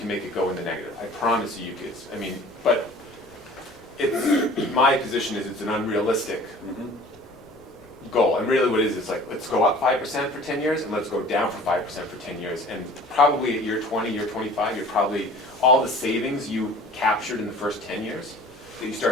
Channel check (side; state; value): left; noise; rumble, 26 dB below the sound